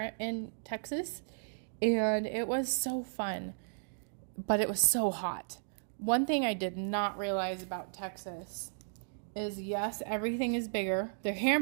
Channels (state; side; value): silent; left; digital silence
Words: in Texas, and it was so fun, but it was so hot. One thing I did not realize about Texas is, yes, everything is bigger. Their